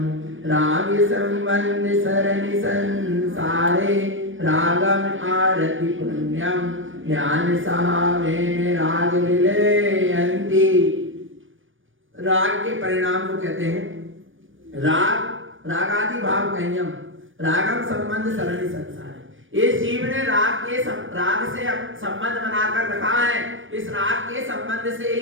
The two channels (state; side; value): late; left; 0.57 ms